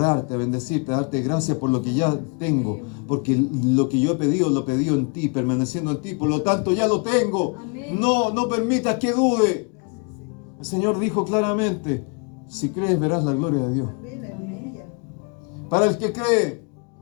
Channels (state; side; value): quieter; right; 35.3 dB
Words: a bendecirte, a darte gracias por lo que ya tengo, porque lo que yo he pedido, lo he pedido en ti, permaneciendo en ti, por lo tanto ya lo tengo. Amén. No permitas que dude. Gracias, Señor. El Señor dijo claramente: si crees, verás la gloria de Dios. Amén, aleluya. Para el que cree,